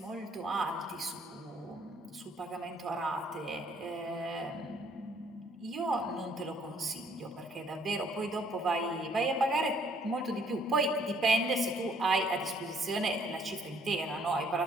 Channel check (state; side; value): normal; both; correlation 0.64